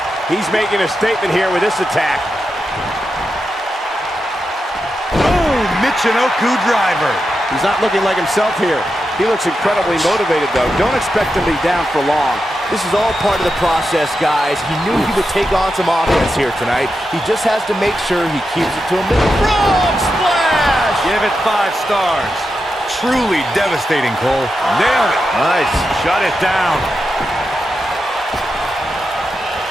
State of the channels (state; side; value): normal; both; correlation 0.88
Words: He's making a statement here with this attack. Boom! Michinoku driver. He's not looking like himself here. He looks incredibly motivated, though. Don't expect him to be down for long. This is all part of the process, guys. He knew he would take on some offense here tonight. He just has to make sure he keeps it to a minimum. Frog splash. Give it 5 stars. Truly devastating, Cole. Nailed it. Nice. Shut it down.